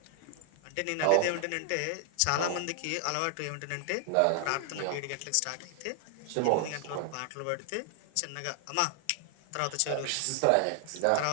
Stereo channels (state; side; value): different; both; correlation 0.00